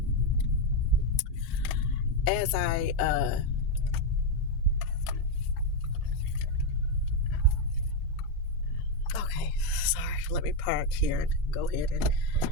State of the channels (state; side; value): normal; both; correlation 0.04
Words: okay, sorry, let me park here and go ahead and